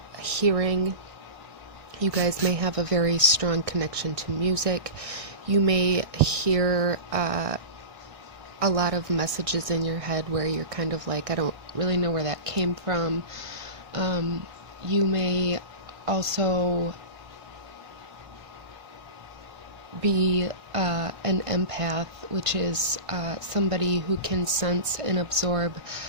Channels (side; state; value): left; late; 1.6 ms